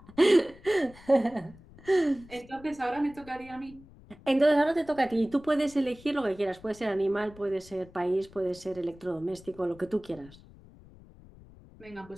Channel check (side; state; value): left; noise; rumble, 22 dB below the sound